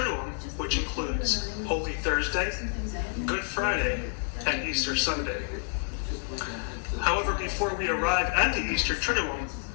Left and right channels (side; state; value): right; silent; 59 dB below the other